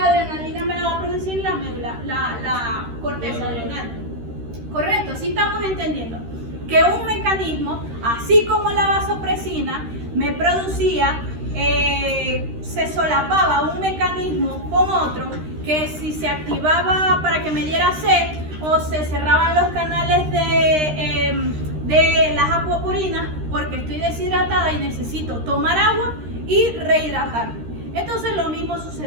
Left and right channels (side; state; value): left; late; 13 ms